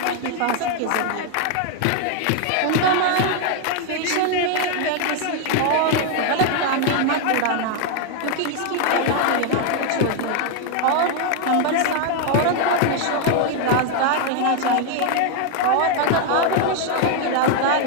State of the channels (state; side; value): different; both; correlation 0.00